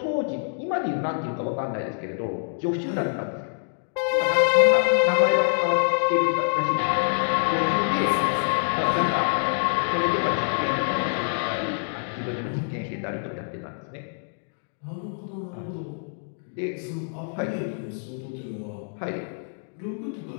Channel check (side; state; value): right; silent; digital silence